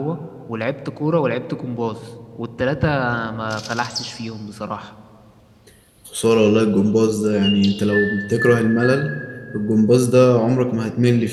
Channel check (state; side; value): identical; both; correlation 1.00